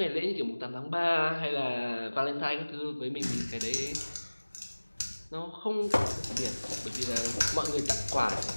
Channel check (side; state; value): both; inverted; correlation -1.00